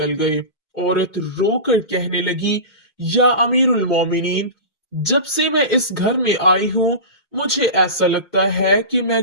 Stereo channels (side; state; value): right; late; 1.0 ms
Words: गए। औरत रोकर कहने लगी, या अमीरुल मोमिनीन, जब से मैं इस घर में आई हूँ मुझे ऐसा लगता है कि